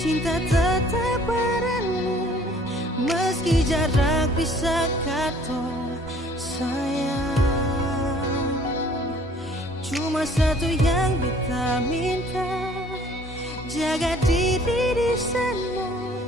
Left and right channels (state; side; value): normal; both; correlation 0.56